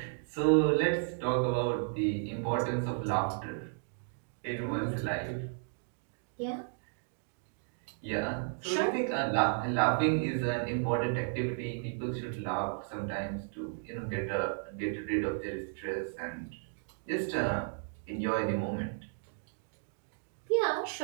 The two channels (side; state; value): left; silent; digital silence